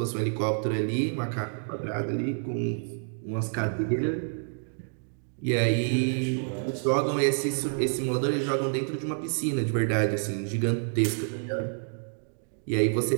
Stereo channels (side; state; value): left; silent; digital silence